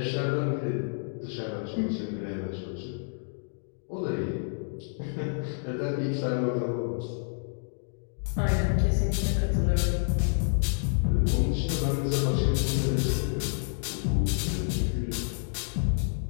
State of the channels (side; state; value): right; silent; digital silence